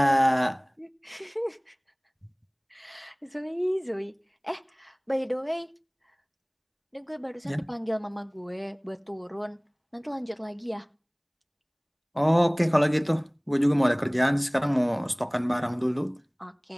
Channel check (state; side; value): identical; both; correlation 1.00